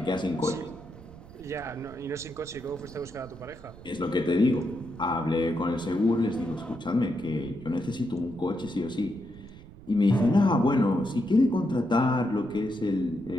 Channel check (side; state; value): right; noise; rumble, 18 dB below the sound